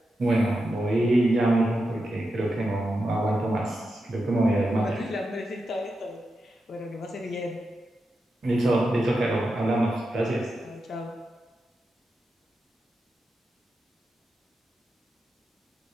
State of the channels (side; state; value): both; normal; correlation 0.88